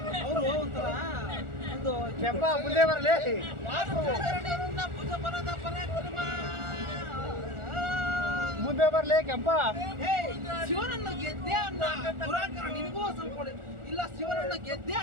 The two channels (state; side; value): late; left; 1.4 ms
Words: ಅವರು ಒಂಥರ ಒಂದು ಕೆಂಪ ಮುಂದೆ ಬರ್ಲಿ. ಯಾರು ನಿನ್ನ ಭುಜ ಬಲದ ಪರಾಕ್ರಮ, ಮುಂದೆ ಬರ್ಲಿ ಕೆಂಪ. ಶಿವನನ್ನು ಗೆದ್ದೆ ಅನ್ನ ದುರಾಂಕರ ನಿನಗೂ ಸ್ವಲ್ಪ ಇಲ್ಲ. ಶಿವನನ್ನು ಗೆದ್ದೆ